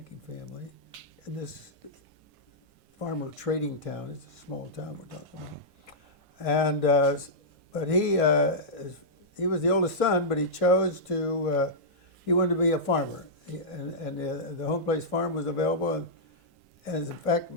family in this farmer trading town. It's a small town we're talking about. And but he was the oldest son, but he chose to he wanted to be a farmer, and the home place farm was available. And as in fact,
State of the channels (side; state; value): left; late; 1.5 ms